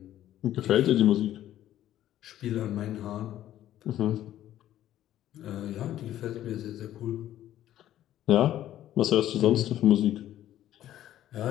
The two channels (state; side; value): quieter; right; 12.6 dB